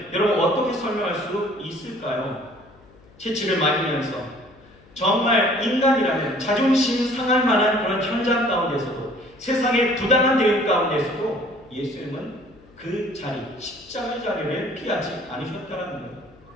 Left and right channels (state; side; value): noise; left; hum, 26 dB below the sound